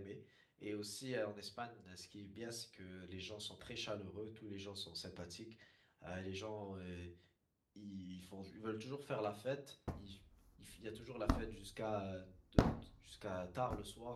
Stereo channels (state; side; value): identical; both; correlation 1.00